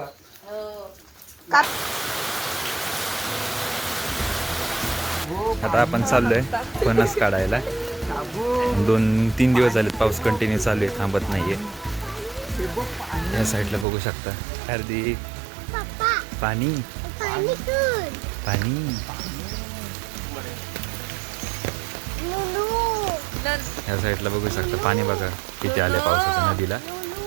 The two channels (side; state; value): left; drops out; at 13.9 s